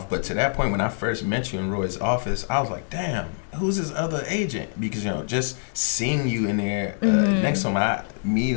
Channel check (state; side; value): silent; right; digital silence